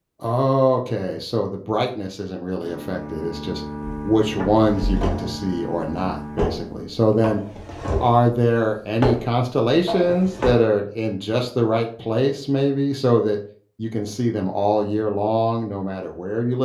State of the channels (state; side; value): identical; both; correlation 1.00